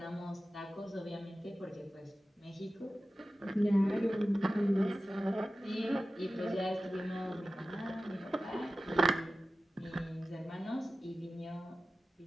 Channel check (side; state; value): both; normal; correlation 0.94